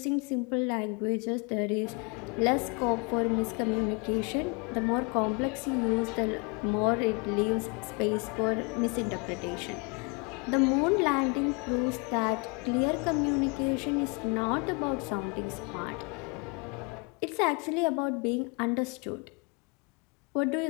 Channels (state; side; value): quieter; right; 31.1 dB